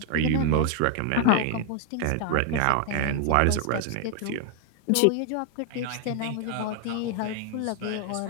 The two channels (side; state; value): both; different; correlation 0.00